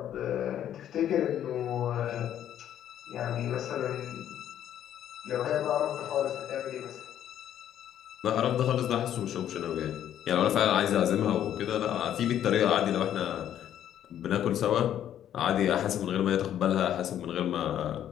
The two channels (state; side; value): quieter; right; 10.7 dB